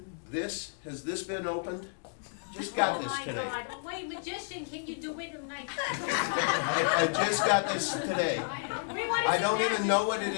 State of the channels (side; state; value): right; silent; digital silence